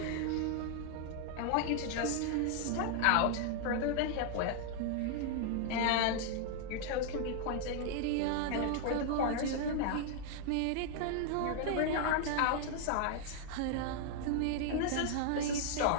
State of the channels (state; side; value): different; both; correlation 0.00